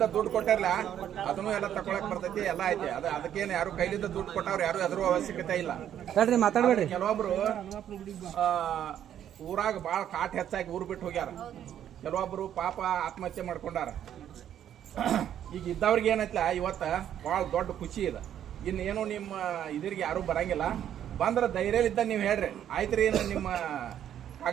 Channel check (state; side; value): quieter; left; 10.3 dB